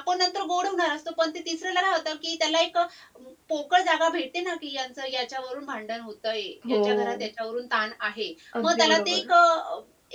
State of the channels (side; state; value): both; identical; correlation 1.00